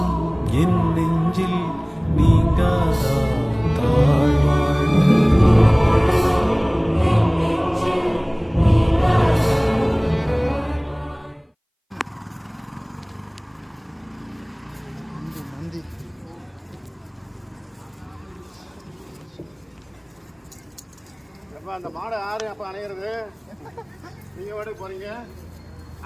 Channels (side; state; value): both; identical; correlation 1.00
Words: என் நெஞ்சில் நீங்காதா தாழ் வாழ்க. அந்த மாடை யாரு அப்ப அணையிறது? நீங்க வாடகைக்கு போறீங்க,